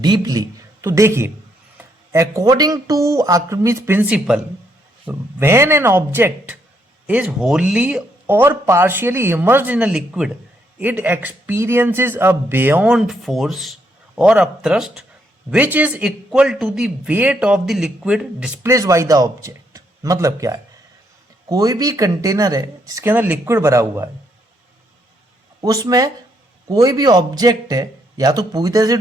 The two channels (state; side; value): normal; both; correlation 0.74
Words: deeply. तो देखिए, according to Archimedes principle, when an object is wholly or partially immersed in a liquid, it experiences a buoyant force or upthrust which is equal to the weight of the liquid displaced by the object. मतलब क्या है? कोई भी container है जिसके अंदर liquid भरा हुआ है, उसमें कोई भी ऑब्जेक्ट है या तो पूरी तरह से